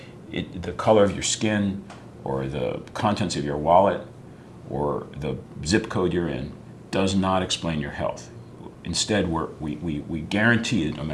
color of your skin or the contents of your wallet or the zip code you're in does not explain your health. Instead, we guarantee that no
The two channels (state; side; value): identical; both; correlation 1.00